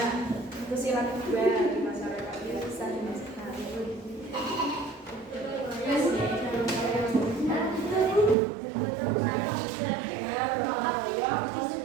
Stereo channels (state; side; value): drops out; left; at 8.3 s